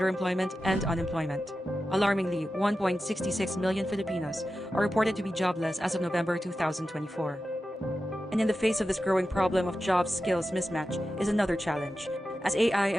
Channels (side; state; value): both; normal; correlation 0.92